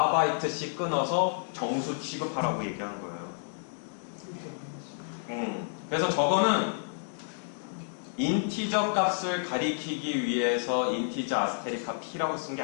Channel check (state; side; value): silent; right; digital silence